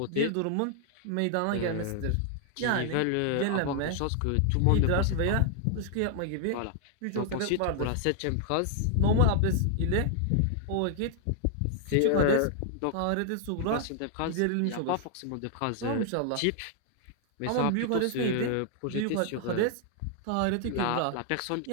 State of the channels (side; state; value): both; different; correlation 0.00